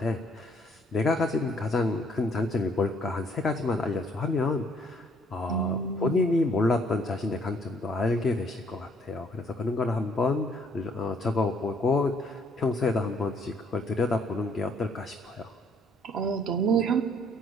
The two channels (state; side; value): normal; both; correlation 0.64